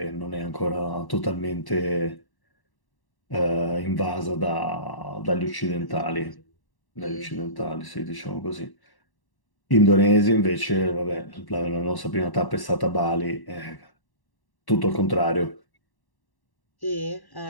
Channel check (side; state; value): right; late; 1.1 ms